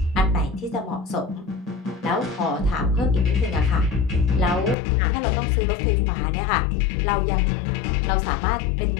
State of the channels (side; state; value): right; drops out; at 4.8 s